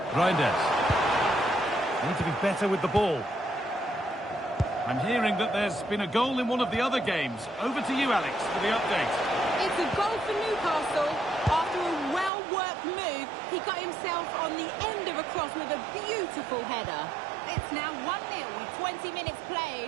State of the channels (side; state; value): left; drops out; at 12.3 s